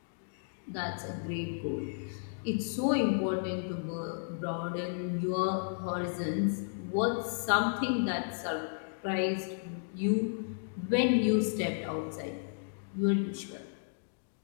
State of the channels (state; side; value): silent; right; digital silence